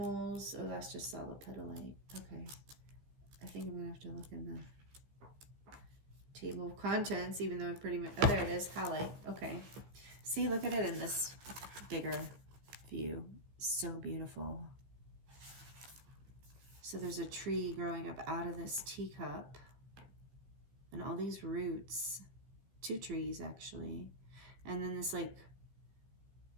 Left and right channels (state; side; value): late; left; 15 ms